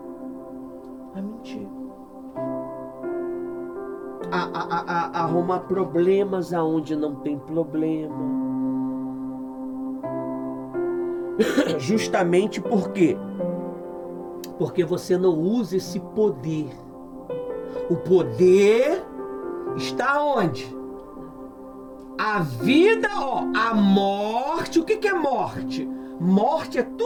A mentir. A arrumar problemas aonde não tem problema. Justamente por quê? Porque você não usa esse poder. O poder está onde? A vida, ó, a morte. O que é morte? Morte é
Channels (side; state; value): both; identical; correlation 1.00